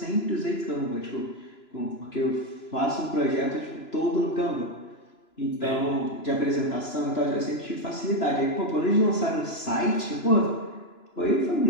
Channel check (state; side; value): late; right; 3.0 ms